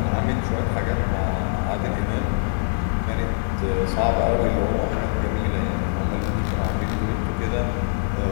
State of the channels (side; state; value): right; silent; digital silence